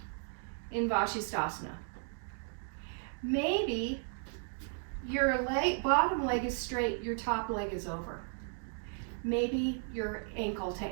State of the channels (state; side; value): silent; left; 54 dB below the other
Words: in Vashisthasana. Maybe your bottom leg is straight, your top leg is over. Maybe you're ankle to